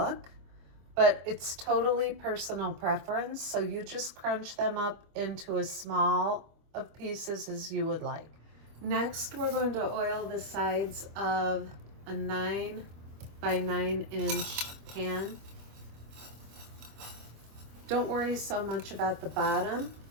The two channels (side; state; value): left; late; 25 ms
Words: But it's totally personal preference, so you just crunch them up into as small of pieces as you would like. Next, we're going to oil the sides of a 9 by 9 inch pan. Don't worry so much about the bottom